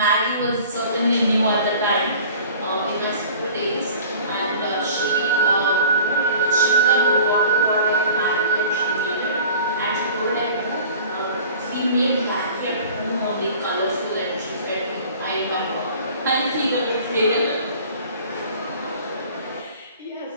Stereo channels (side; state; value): both; inverted; correlation -0.46